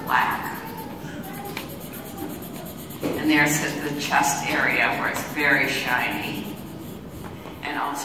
black. And there's the chest area where it's very shiny. And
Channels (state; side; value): identical; both; correlation 1.00